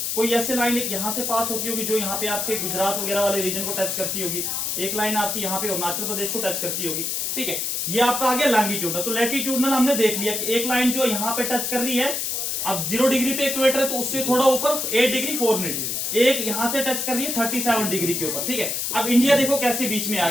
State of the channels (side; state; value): left; noise; hiss, 1 dB below the sound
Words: कोई ऐसे लाइन एक यहां से पास होती होगी जो यहाँ पे आपके गुजरात वगैरह वाले रीजन को टच करती होगी, एक लाइन आपकी यहाँ पे अरुणाचल प्रदेश को टच करती होगी, ठीक है। ये आपका आ गया लॉन्गिट्यूडनल। तो लैटिट्यूडनल हमने देख लिया कि एक लाइन जो यहाँ पे टच कर रही है, अब 0 डिग्री पे इक्वेटर है तो उससे थोड़ा ऊपर 8 डिग्री 4 मिनट, एक यहां से टच कर रही है 37 डिग्री के ऊपर, ठीक है। अब इंडिया देखो कैसे बीच में आ